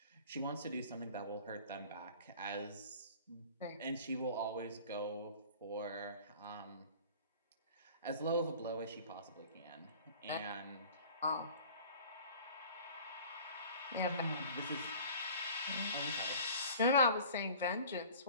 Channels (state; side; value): inverted; both; correlation -0.45